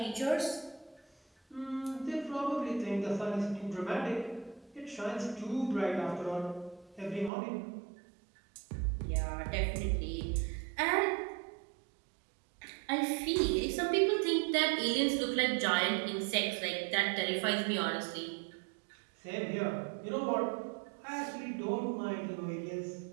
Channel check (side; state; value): left; drops out; at 7.3 s